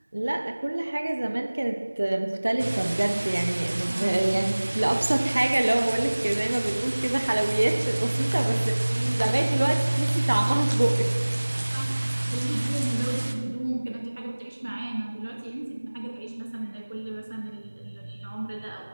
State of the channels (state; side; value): inverted; both; correlation -1.00